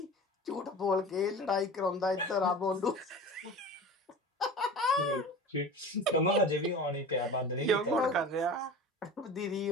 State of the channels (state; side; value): normal; both; correlation 0.35